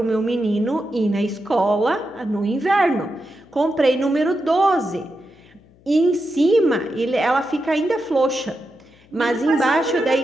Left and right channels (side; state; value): left; noise; hum, 29 dB below the sound